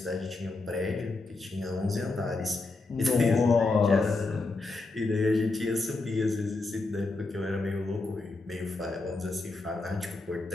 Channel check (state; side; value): quieter; right; 3.5 dB